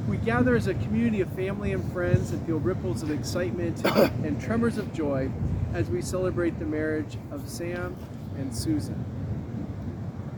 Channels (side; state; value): both; identical; correlation 1.00